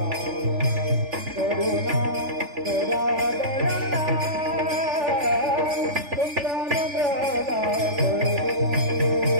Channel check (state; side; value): late; left; 3.4 ms